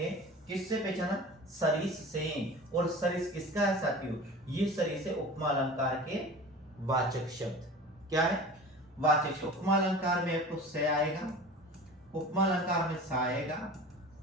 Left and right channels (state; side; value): normal; both; correlation 0.38